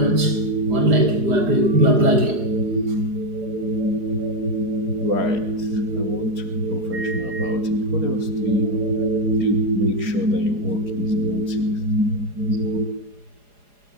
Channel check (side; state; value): left; late; 4.8 ms